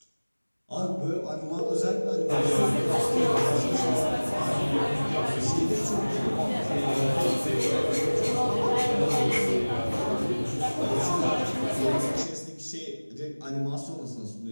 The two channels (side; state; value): both; inverted; correlation -1.00